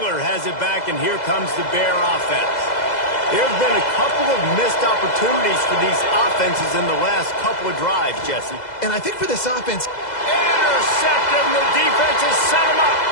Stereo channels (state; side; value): late; right; 2.0 ms